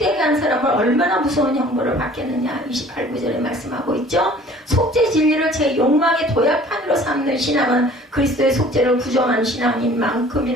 한 사람을 얼마나 무서운 형벌을 받겠느냐 28구절에 말씀하고 있죠. 속죄 진리를 제 욕망의 도약판으로 삼는 신앙은 그리스도의 속죄를 부정하는 신앙인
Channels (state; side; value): normal; both; correlation 0.50